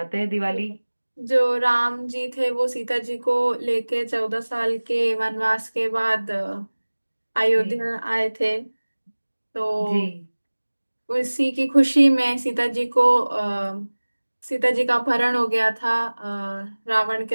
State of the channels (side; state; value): both; inverted; correlation -1.00